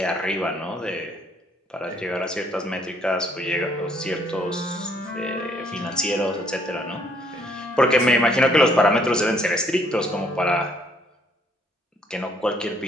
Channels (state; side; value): normal; both; correlation 0.65